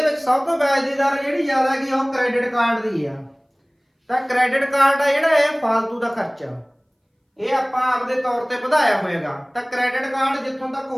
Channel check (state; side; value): identical; both; correlation 1.00